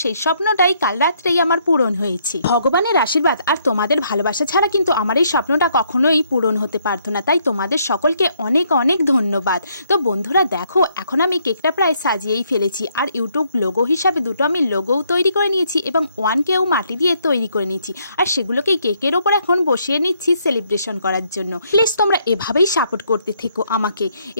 সেই স্বপ্নটাই কাল রাত্রেই আমার পূরণ হয়েছে। ভগবানের আশীর্বাদ আর তোমাদের ভালোবাসা ছাড়া কিন্তু আমার এই স্বপ্নটা কখনোই পূরণ হতে পারতো না। তাই তোমাদের সকলকে অনেক অনেক ধন্যবাদ। তো বন্ধুরা দেখো, এখন আমি কেকটা প্রায় সাজিয়েই ফেলেছি। আর ইউটিউব লোগো হিসাবে দুটো আমি লোগোও তৈরি করে নিয়েছি এবং 1Kও মাটি দিয়ে তৈরি করে নিয়েছি। আর সেগুলোকেই কেকের ওপর এখন বসিয়ে নিচ্ছি সেলিব্রেশন করার জন্য। প্লিজ তোমরা এভাবেই সাপোর্ট করতে থেকো আমাকে।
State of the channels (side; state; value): both; inverted; correlation -0.70